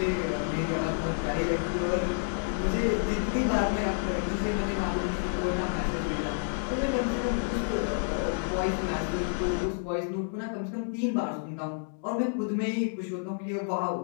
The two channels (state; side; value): silent; right; digital silence